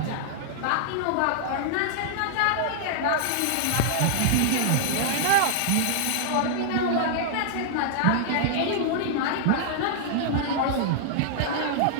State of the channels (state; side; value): different; both; correlation -0.01